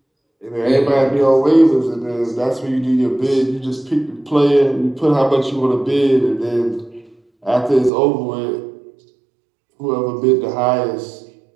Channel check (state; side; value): drops out; left; at 7.9 s